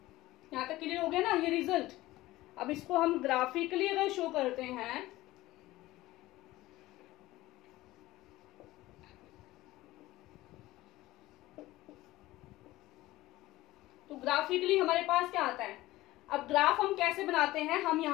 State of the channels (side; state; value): right; quieter; 17.5 dB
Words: यहां तक क्लियर हो गया ना ये रिजल्ट। अब इसको हम ग्राफिकली अगर शो करते हैं तो ग्राफिकली हमारे पास क्या आता है। अब ग्राफ हम कैसे बनाते हैं, हम